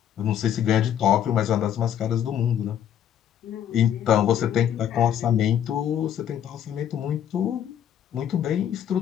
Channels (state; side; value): quieter; right; 9.9 dB